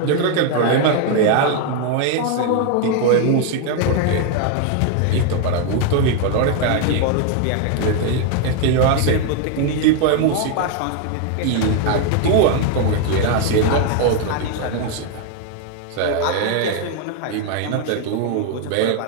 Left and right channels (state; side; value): different; both; correlation 0.01